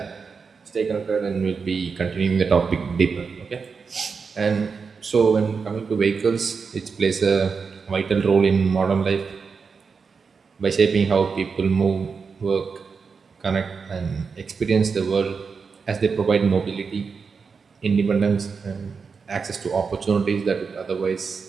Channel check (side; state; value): left; quieter; 5.3 dB